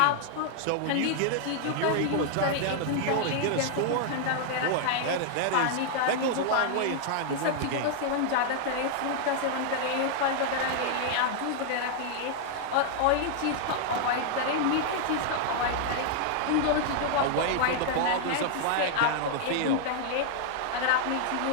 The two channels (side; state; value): both; different; correlation 0.00